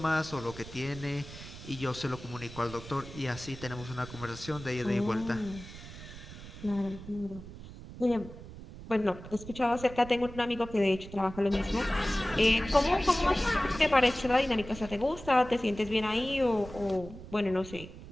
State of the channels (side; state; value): right; noise; rumble, 14 dB below the sound